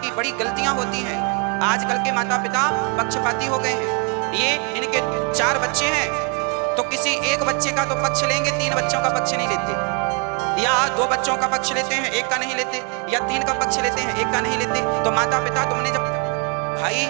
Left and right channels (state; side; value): quieter; left; 35.2 dB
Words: बड़ी गलतियां होती हैं। आजकल के माता पिता पक्षपाती हो गए हैं। ये इनके 4 बच्चे हैं तो किसी एक बच्चे का तो पक्ष लेंगे, 3 बच्चों का पक्ष नहीं लेते, या 2 बच्चों का पक्ष लेते हैं, 1 का नहीं लेते, या 3 का पक्ष लेते हैं, 1 का नहीं लेते। तो माता पिता तुमने जब भाई